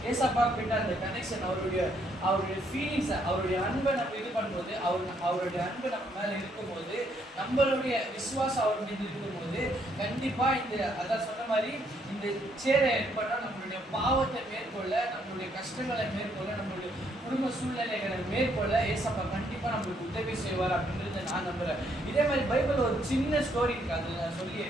ஏசப்பா கிட்ட அந்த கனெக்ஷன், அவருடைய ஃபீலிங்ஸ், அவருடைய அன்பை நம்ம இது பண்ணும்போது, அவருடைய அன்பு நம்ம மேல இருக்கும்போது, நம்மளுடைய விசுவாசம் அவர் மீது இருக்கும்போது, கண்டிப்பா அதான் சொன்ன மாதிரி இந்த சேரை ஏற்பட்டா நம்மளுடைய பாவத்தை மேற்கொள்ள, நம்மளுடைய கஷ்டங்களை மேற்கொள்ள, நம்மளுடைய குடும்ப சூழ்நிலைகளை மேற்கொள்ள ஏசப்பா கண்டிப்பா நம்மளுக்கு உதவி செய்வார் அப்படின்றத நான் நம்புறேன். இதே மாதிரி பைபிள் ஒரு சின்ன ஸ்டோரி இருக்கு, அது நான் சொல்லி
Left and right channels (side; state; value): both; normal; correlation 0.71